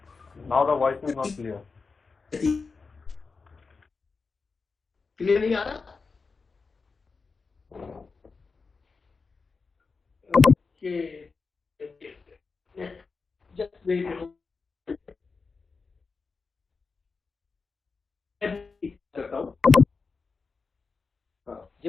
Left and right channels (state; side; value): quieter; right; 4.5 dB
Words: Now the voice is not clear. Clear नहीं आ रहा? Just wait a moment.